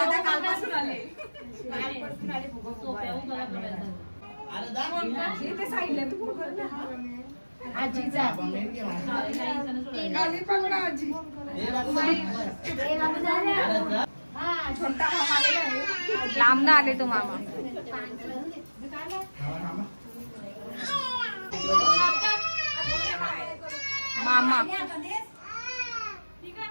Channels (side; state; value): both; inverted; correlation -1.00